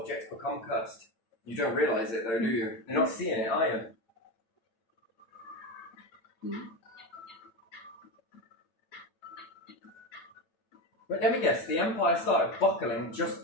become cursed. You don't realise it though, do you? You're not seeing it, are you? But let me guess, the empire started buckling just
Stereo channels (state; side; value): late; right; 8.9 ms